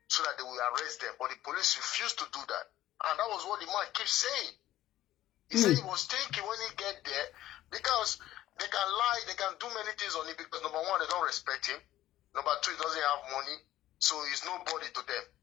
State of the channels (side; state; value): right; quieter; 14.1 dB